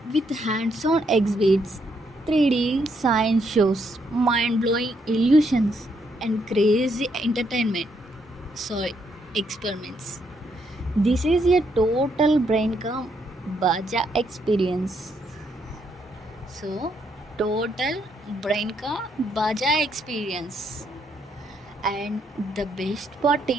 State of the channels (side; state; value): both; normal; correlation 0.75